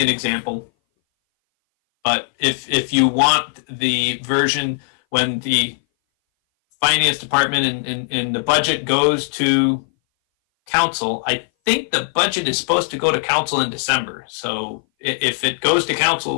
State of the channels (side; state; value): right; silent; 59 dB below the other